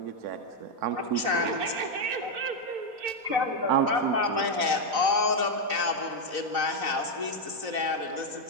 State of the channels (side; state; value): left; late; 4.0 ms